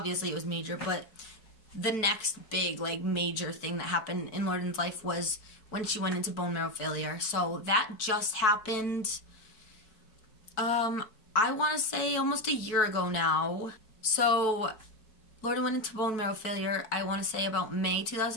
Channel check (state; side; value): late; right; 4.6 ms